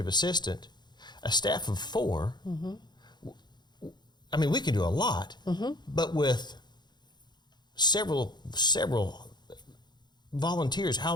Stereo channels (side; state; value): right; late; 0.21 ms